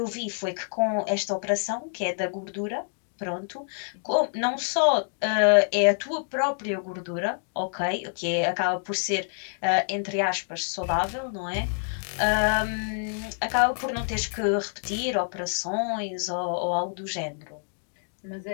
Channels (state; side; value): silent; right; 60 dB below the other